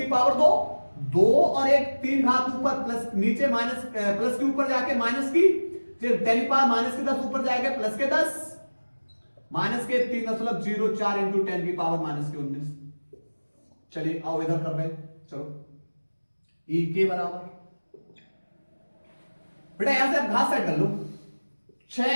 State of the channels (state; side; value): inverted; both; correlation -1.00